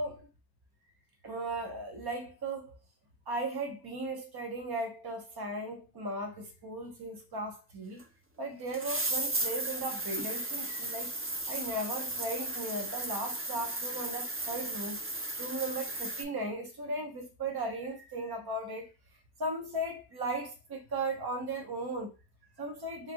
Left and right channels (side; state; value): both; normal; correlation -0.05